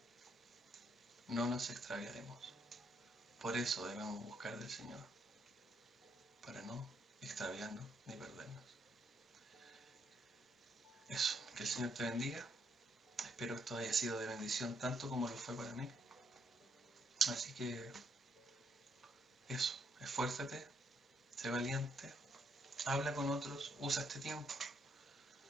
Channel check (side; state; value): both; normal; correlation 0.74